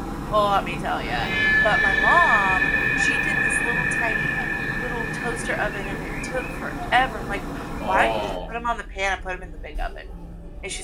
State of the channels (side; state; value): both; identical; correlation 1.00